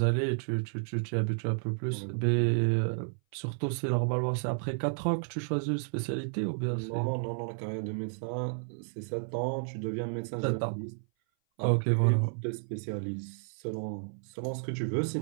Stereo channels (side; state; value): left; silent; 57 dB below the other